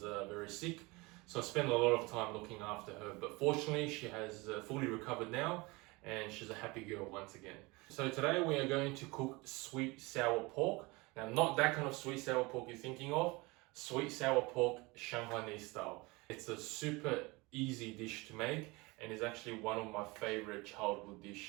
very sick. So I spent a lot of time looking after her, but fortunately she has fully recovered now and she's a happy girl once again. So today we are going to cook sweet sour pork. Now not that kind of sweet sour pork you're thinking of, sweet sour pork Shanghainese style. It's a super easy dish to make and is actually one of my favorite childhood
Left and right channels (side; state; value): left; quieter; 24.5 dB